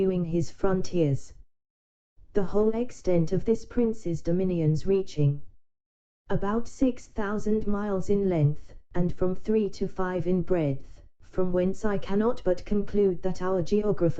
his frontiers. The whole extent of this prince's dominions reaching about 6,000 miles in length, and from 3 to 5 in breadth, from whence I cannot but conclude that our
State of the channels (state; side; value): identical; both; correlation 1.00